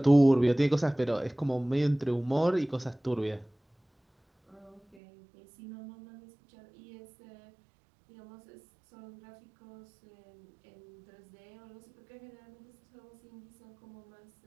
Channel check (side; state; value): left; drops out; at 5.0 s